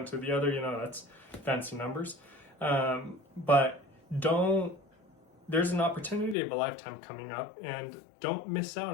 to the other. You know, that's fancy numbers. But there's an opportunity of a lifetime coming up, and don't miss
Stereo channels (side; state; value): right; drops out; at 6.4 s